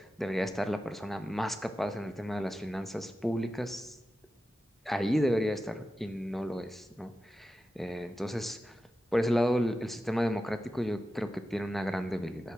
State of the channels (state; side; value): normal; both; correlation 0.92